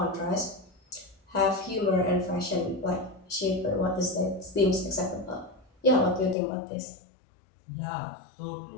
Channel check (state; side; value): drops out; right; at 6.4 s